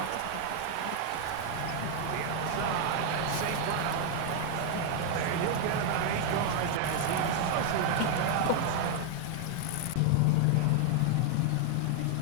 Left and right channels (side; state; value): both; different; correlation 0.00